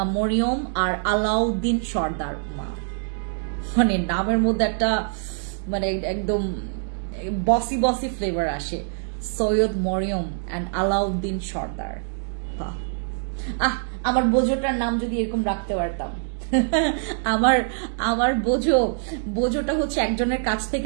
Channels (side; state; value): left; silent; digital silence